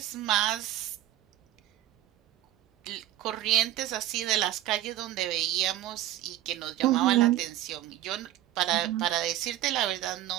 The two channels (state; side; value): quieter; left; 13.7 dB